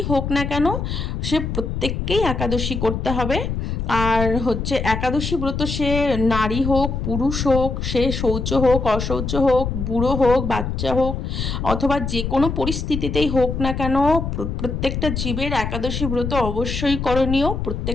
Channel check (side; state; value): left; noise; rumble, 3 dB below the sound